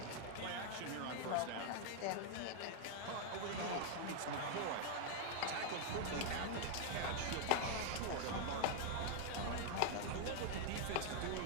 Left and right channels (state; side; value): different; both; correlation 0.00